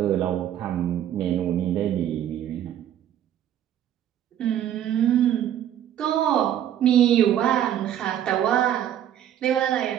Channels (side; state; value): left; quieter; 10.8 dB